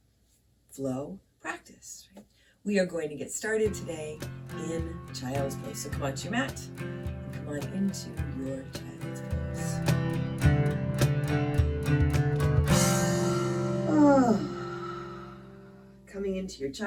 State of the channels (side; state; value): both; identical; correlation 1.00